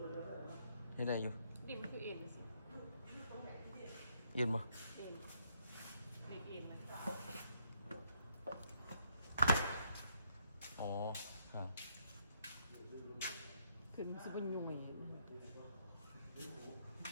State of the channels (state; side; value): inverted; both; correlation -0.73